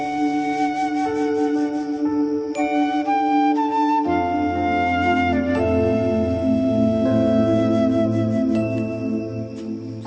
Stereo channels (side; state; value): both; identical; correlation 1.00